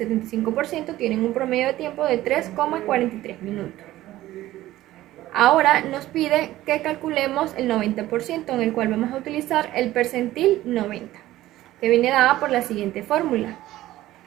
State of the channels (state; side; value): quieter; left; 15.4 dB